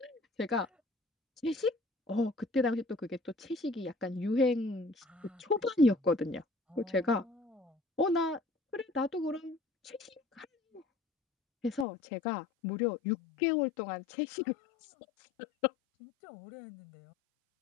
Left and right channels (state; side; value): drops out; right; at 11.9 s